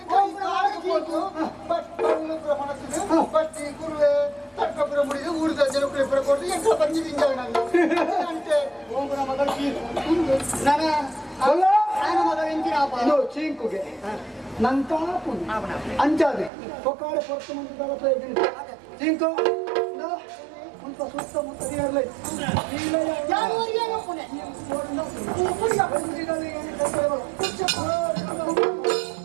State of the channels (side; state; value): left; drops out; at 16.5 s